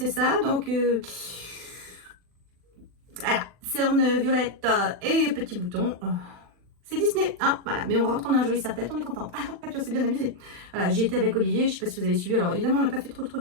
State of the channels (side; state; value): left; late; 40 ms